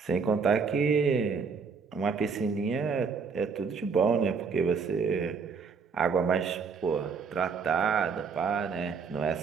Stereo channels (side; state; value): left; quieter; 5.5 dB